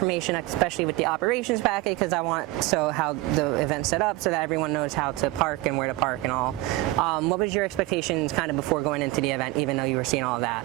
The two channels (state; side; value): quieter; left; 19.3 dB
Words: especially with the operations packet, because I want how the event's set up so that everyone knows how to park and where to park and all. What was your expectations kind of before going into the event, even though you were seeing all of that?